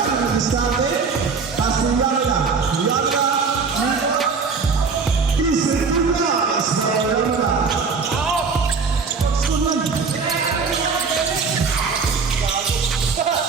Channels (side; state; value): left; quieter; 5.0 dB